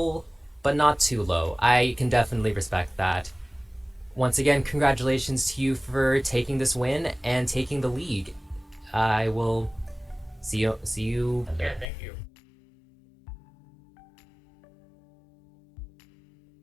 but not too low. I can definitely respect that. Once again, congratulations to you for taking this win and taking the league. I will see you. Yeah, thank you.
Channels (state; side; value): drops out; right; at 11.9 s